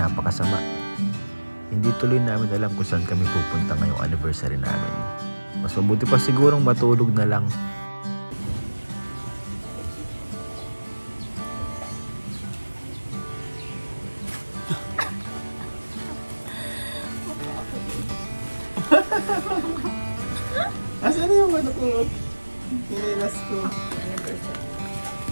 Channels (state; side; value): inverted; both; correlation -1.00